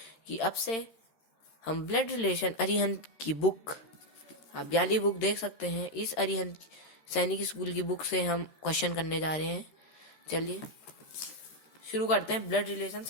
कि अब से हम ब्लड रिलेशन अरिहंत की बुक, आप वाली बुक देख सकते हैं। इस अरिहंत सैनिक स्कूल की बुक से हम क्वेश्चन करने जा रहे हैं। चलिए शुरू करते हैं। ब्लड रिलेशन,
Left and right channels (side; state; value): right; late; 13 ms